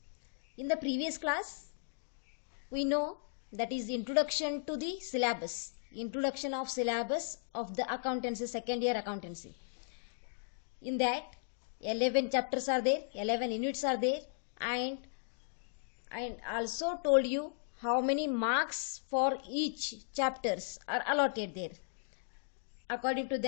In the previous class, we know that is introduction to the syllabus. Introduction of syllabus of the accountancy, second year accountancy. In that 11 chapters are there, 11 units are there, and also told you how many marks for each chapters are allotted there. According to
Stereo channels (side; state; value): right; silent; digital silence